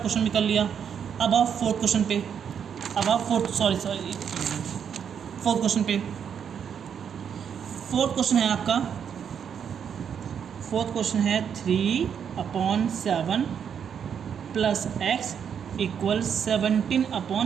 क्वेश्चन भी कर लिया। अब आप फोर्थ क्वेश्चन पे, फोर्थ क्वेश्चन पे। फोर्थ क्वेश्चन है आपका, फोर्थ क्वेश्चन है 3/7 + x इक्वल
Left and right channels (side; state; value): left; quieter; 7.8 dB